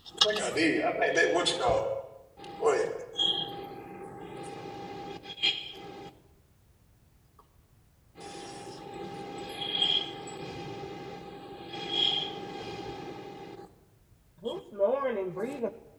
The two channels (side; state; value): both; identical; correlation 1.00